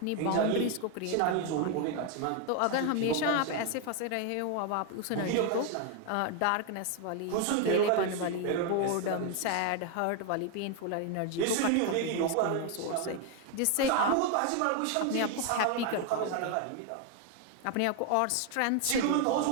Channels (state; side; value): different; both; correlation 0.01